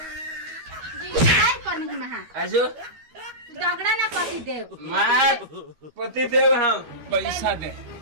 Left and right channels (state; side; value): late; left; 13 ms